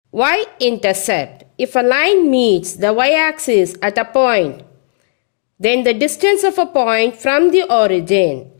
Y-intercept. If a line meets the y-axis at a point, then the distance of a point from the origin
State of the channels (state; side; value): silent; right; digital silence